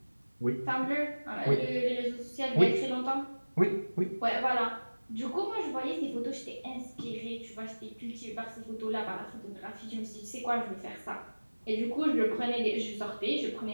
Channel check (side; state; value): both; inverted; correlation -1.00